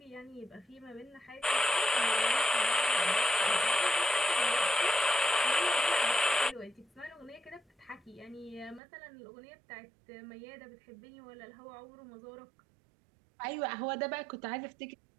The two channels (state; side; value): drops out; left; at 8.8 s